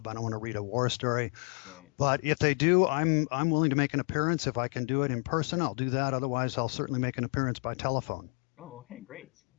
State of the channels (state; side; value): quieter; right; 39.6 dB